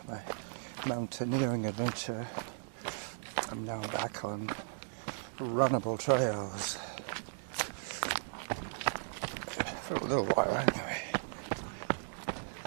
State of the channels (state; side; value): silent; left; digital silence